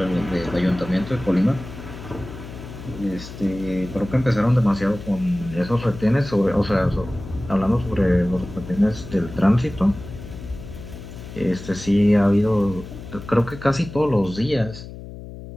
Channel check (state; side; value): noise; left; hum, 13 dB below the sound